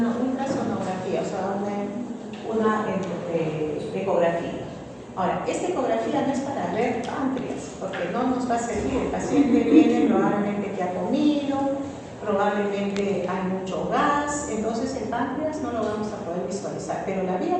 ultrasonografía, o sea, una ecografía. Ahora, esta ecografía no es para ver páncreas, porque no nos va a servir. El paciente viene probablemente que ha comido, probablemente hay mucho gas, entonces el páncreas no lo vamos a poder visualizar, pero la vía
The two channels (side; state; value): both; identical; correlation 1.00